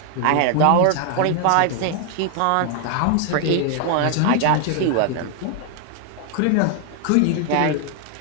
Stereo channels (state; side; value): different; both; correlation 0.00